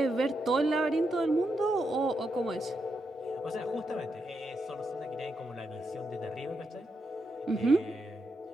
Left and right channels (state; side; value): normal; both; correlation 0.83